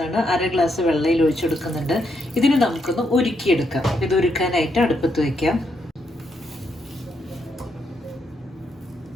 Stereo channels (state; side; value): normal; both; correlation 0.78